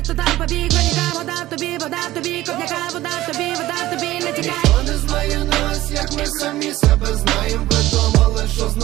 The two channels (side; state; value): left; quieter; 16.2 dB